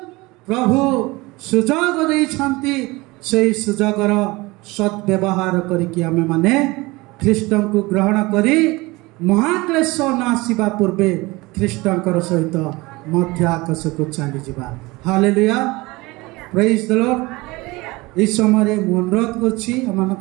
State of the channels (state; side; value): quieter; left; 22.5 dB